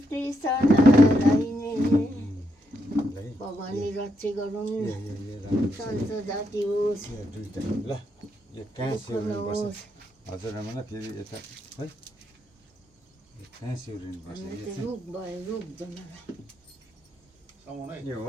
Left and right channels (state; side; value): normal; both; correlation 0.80